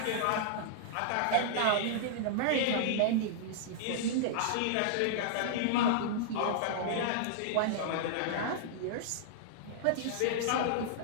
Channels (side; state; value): both; different; correlation -0.01